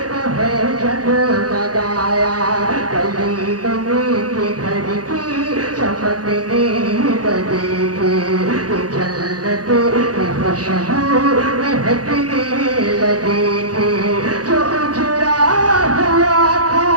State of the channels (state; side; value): late; left; 0.68 ms